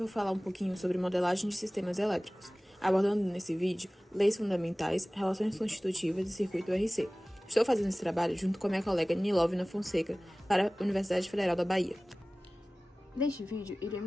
falar um pouquinho sobre modelagem de sistemas elétricos, abordando nesse vídeo leis fundamentais, relações constitutivas e circuito RC. Estou fazendo esse trabalho junto com a minha colega Nilovina Fonseca para a Universidade Federal da Bahia. Neste vídeo,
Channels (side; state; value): both; normal; correlation 0.98